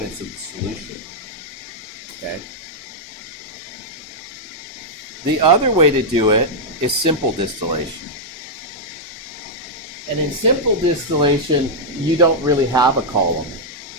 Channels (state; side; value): normal; both; correlation -0.05